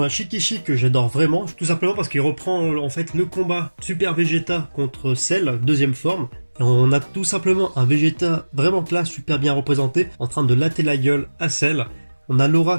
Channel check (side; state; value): both; inverted; correlation -1.00